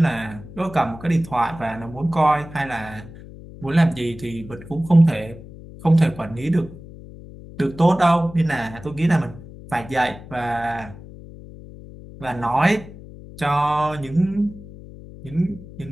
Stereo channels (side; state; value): left; noise; hum, 16 dB below the sound